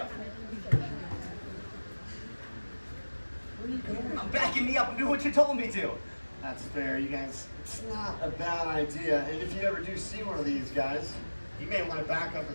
I'm backing me up and do what you told me to. That's fair, you guys. It's not a bad idea, and if you ever do see one of these guys, you may want to back up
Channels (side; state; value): both; inverted; correlation -1.00